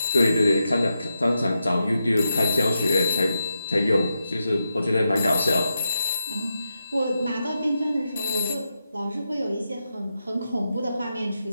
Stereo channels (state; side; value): inverted; both; correlation -0.87